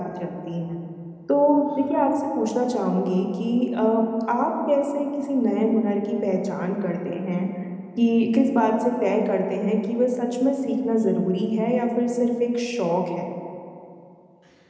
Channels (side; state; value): both; identical; correlation 1.00